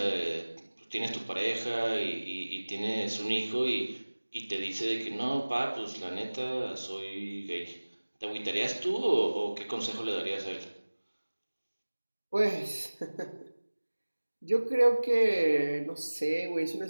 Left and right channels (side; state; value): both; inverted; correlation -1.00